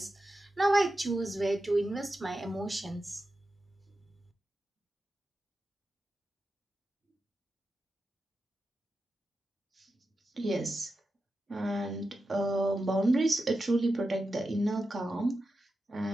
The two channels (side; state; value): both; normal; correlation 0.90